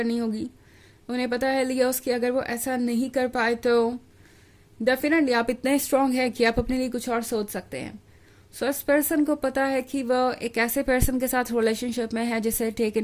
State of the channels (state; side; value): identical; both; correlation 1.00